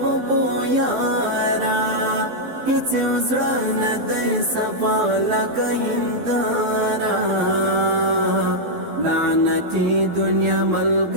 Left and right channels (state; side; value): late; left; 12 ms